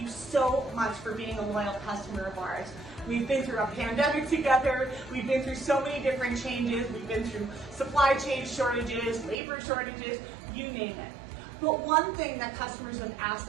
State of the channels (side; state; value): left; drops out; at 9.3 s